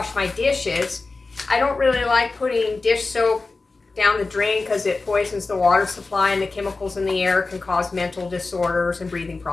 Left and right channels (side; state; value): right; quieter; 3.7 dB